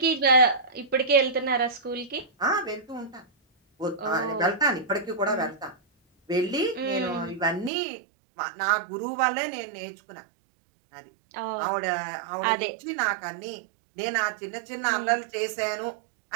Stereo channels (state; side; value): drops out; left; at 7.7 s